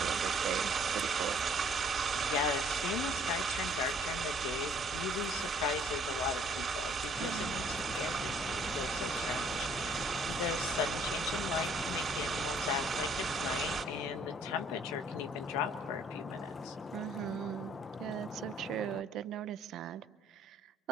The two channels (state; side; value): normal; both; correlation 0.59